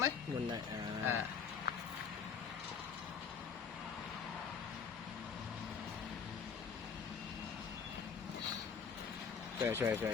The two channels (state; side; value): quieter; right; 6.3 dB